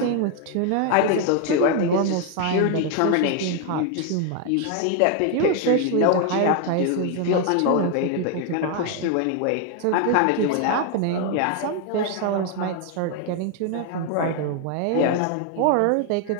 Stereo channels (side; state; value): both; different; correlation 0.01